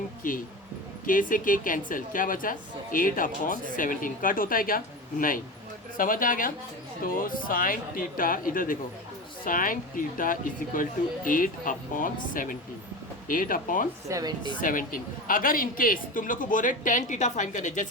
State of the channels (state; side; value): normal; both; correlation 0.26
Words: K से K कैंसिल, क्या बचा 8/17, कट होता है क्या, नहीं, समझ आ गया। तो साइन थीटा, इधर देखो, sine theta is equal to 8/17, 8/17। अगर इन केस तुम लोग को बोल रहे tan थीटा फाइंड करने,